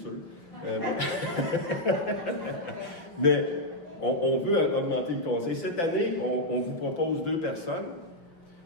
Mais on veut augmenter le conseil. Cette année, on vous propose 2 personnes.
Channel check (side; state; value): right; late; 5.6 ms